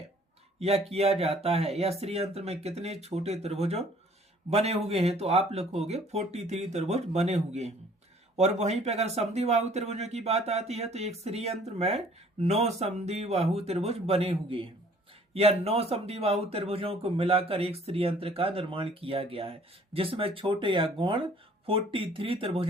या किया जाता है, या श्रीयंत्र में कितने छोटे त्रिभुजों बने हुए हैं, तो आप लिखोगे 43 त्रिभुज बने हुए हैं। और वहीं पे अगर समद्विबाहु त्रिभुजों की बात आती है तो एक श्रीयंत्र में 9 समद्विबाहु त्रिभुज बने हुए हैं, या 9 समद्विबाहु त्रिभुजों को मिलाकर एक श्रीयंत्र का निर्माण किया गया है, जिसमें छोटे या गौण 43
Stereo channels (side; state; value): both; normal; correlation 0.56